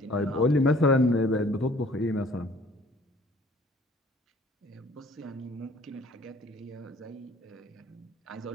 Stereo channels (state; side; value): normal; both; correlation 0.54